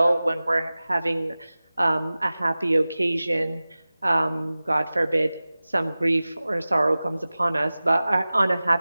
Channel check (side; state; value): both; inverted; correlation -0.97